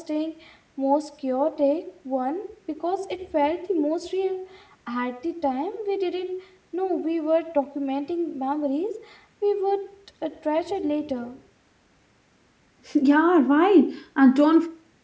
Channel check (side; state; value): both; identical; correlation 1.00